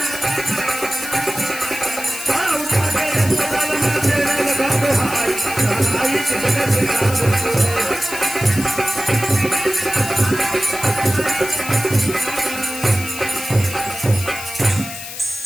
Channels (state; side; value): noise; left; hiss, 10 dB below the sound